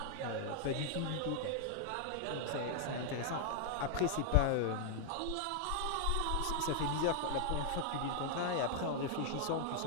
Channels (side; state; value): both; different; correlation 0.00